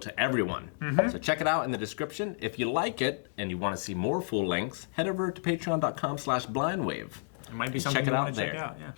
everyone. So check it out in the description. If you like it and you want to see more full lengths, head over to patreon.com/blindwave. It might be And something check it you out want to there. check out. Yeah.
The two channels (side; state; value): right; silent; digital silence